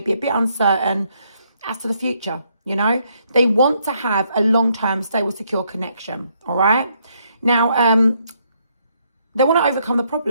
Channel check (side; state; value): both; inverted; correlation -0.73